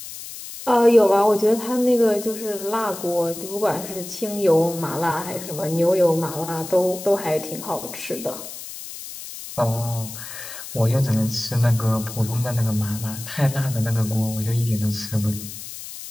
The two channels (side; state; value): left; noise; hiss, 11 dB below the sound